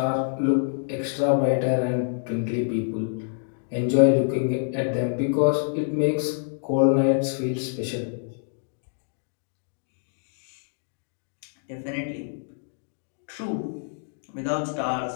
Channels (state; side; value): silent; right; digital silence